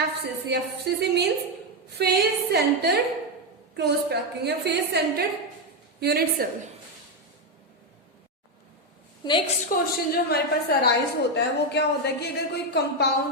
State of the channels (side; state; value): both; normal; correlation 0.06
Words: FCC means face centred close packing या face centred unit cell. Next question जो हमारे पास अराइज होता है वो क्या होता है कि अगर कोई